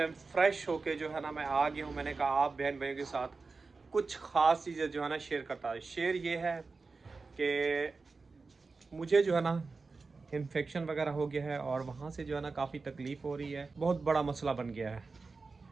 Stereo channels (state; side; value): quieter; left; 4.1 dB